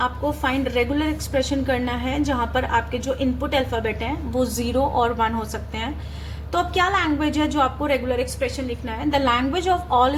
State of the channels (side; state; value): both; identical; correlation 1.00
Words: फाइंड रेगुलर एक्सप्रेशन करना है जहाँ पर आपके जो इनपुट अल्फाबेट हैं वो 0 और 1 हो सकते हैं। तो अब क्या लैंग्वेज है जो आपको रेगुलर एक्सप्रेशन लिखना है, the language of